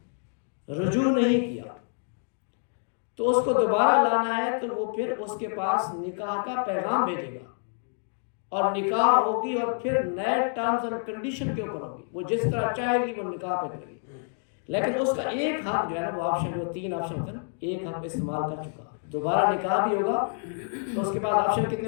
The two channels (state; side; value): silent; right; 60 dB below the other